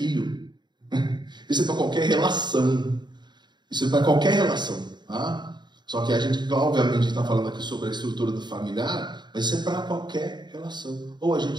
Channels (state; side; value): late; left; 0.21 ms